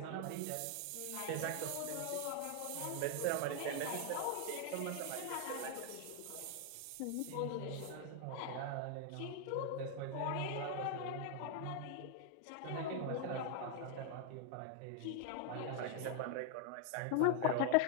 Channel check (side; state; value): both; different; correlation 0.00